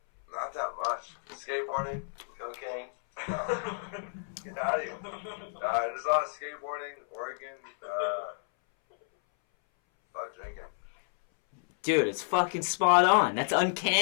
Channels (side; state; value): right; silent; 57 dB below the other